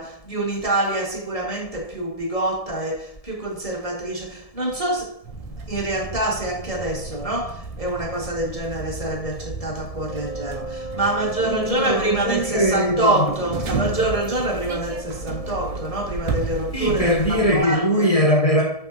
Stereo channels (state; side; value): late; right; 1.7 ms